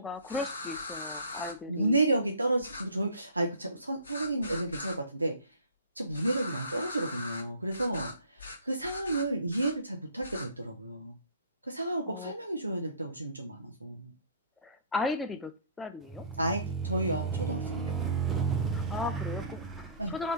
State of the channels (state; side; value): inverted; both; correlation -0.48